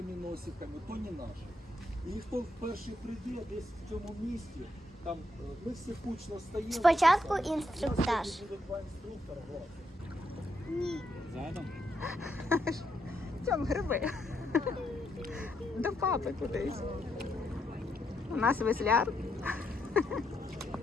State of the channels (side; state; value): both; normal; correlation 0.78